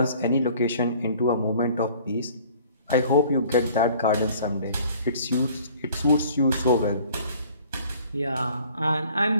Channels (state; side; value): inverted; both; correlation -0.53